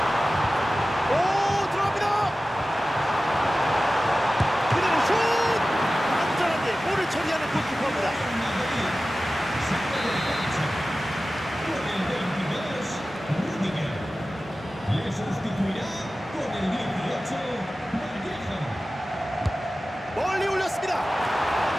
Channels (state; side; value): normal; both; correlation 0.95